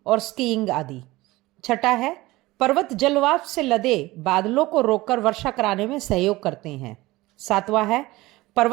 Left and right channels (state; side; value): quieter; left; 19.5 dB